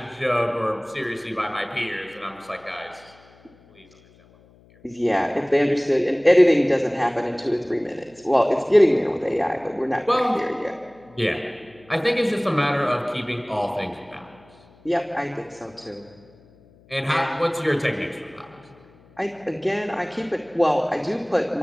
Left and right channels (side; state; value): left; noise; hum, 28 dB below the sound